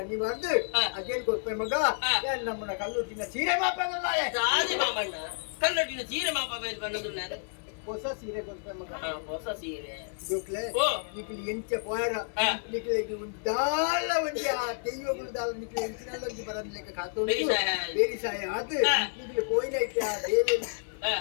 ನೀವು ಬಂದು ಹಾ. ಅದೇನು ಕೊಡ್ಪೆ ಮಗ ಹಾ. ಏನ್ ನಮ್ಮನ್ನ ಕಲ್ಲುಟ್ಟಿನ ಸೀರೆ ಮಾಪಲ್ಲ ಸಾರಿ ಮಾಮಣ್ಣ ಕಲ್ಲೊಟ್ಟಿನ ಸೀರೆ ಮಾಪ ಬೈದು ಬಂದದುಲ್ಲಾರೆ ಹೊಸ ಸೀರೆ ಕೊಡ್ಪೆ ಮಗ ಹೊಸ ಸೀರೆ ಜೋಕ್ಲೆ ಓ. ನಿಕ್ಲಿ ಎಂಚ ಪೋಯರ ಹಾ. ನಿಕ್ಲೆ ದಾಲ ಒಂಜಿ ಆ ದೆಯ್ಯಗಳು ದಾಲ ನಿಕ್ಲೆ ಎಂಚಿನಲ್ಲ ಒಂಜಿ ಬರದ್ ಲೆಕ್ಕ ಕಾತು ಬೇರಿ ಸಾಯ. ಬೇರಿ ಸಾಯ ಅದು ಹಾ. ನಿಕ್ಲೆ ಪೋಯಿನ ಐತೆ ಆ ದೇವಿ ಹಾ.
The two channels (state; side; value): silent; right; 58 dB below the other